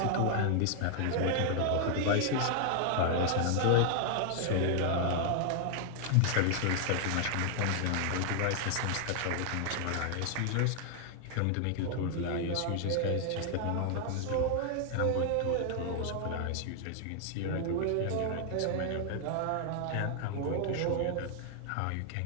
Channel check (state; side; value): different; both; correlation 0.00